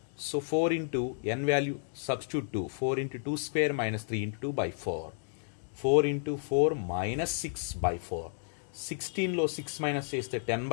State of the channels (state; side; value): silent; right; digital silence